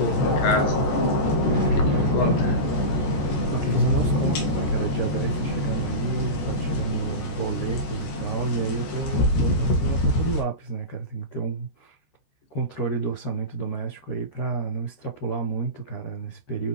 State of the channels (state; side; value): late; right; 14 ms